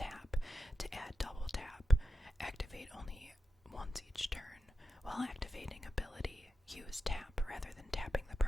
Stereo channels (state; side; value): normal; both; correlation 0.91